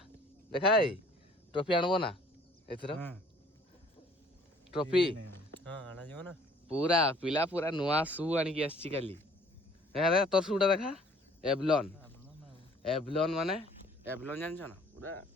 ଦେଖା ଭାଇ ଟ୍ରଫି ଆଣିବ ନା ଏଥର? ଟ୍ରଫି ଆଣାଯିବ ନା। ପୁରା ପିଲା ପୁରା ନୂଆ ସୁ ଆଣିକି ଆସିଛି କାଲି। ଦେଖା ଦେଖା ତୋର ସୁଟା ଦେଖା, ଏଭଲନ୍। ଏଭଲନ୍ ମାନେ ଏଭଲନ୍ ଜାଣିଛ ନା? ପୁରା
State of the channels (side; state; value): both; normal; correlation 0.56